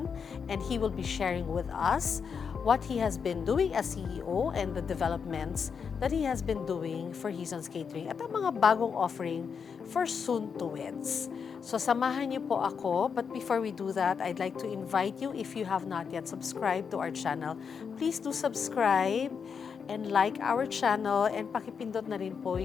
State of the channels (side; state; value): right; quieter; 6.3 dB